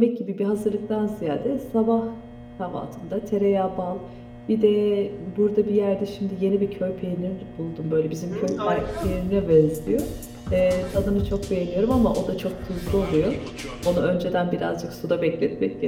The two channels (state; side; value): identical; both; correlation 1.00